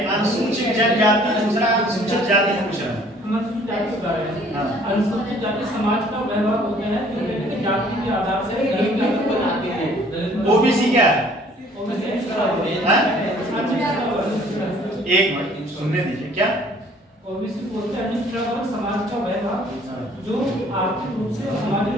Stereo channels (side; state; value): both; normal; correlation 0.56